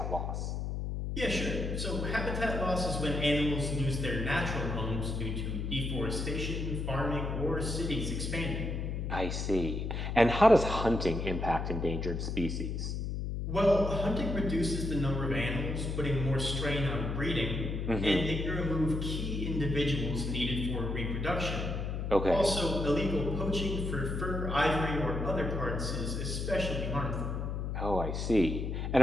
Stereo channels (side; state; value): left; noise; hum, 2 dB below the sound